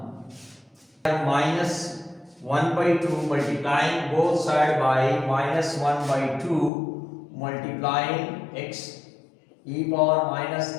Minus 1 by 2 multiplying both sides by minus 1 by 2 multiplying x e power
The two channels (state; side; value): drops out; right; at 6.7 s